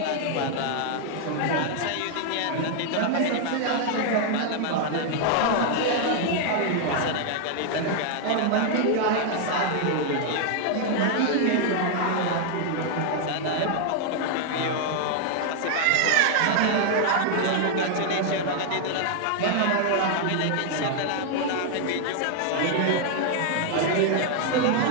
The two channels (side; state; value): both; different; correlation 0.00